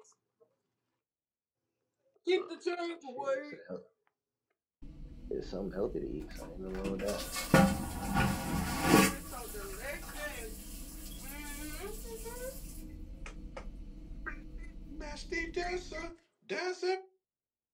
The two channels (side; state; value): both; identical; correlation 1.00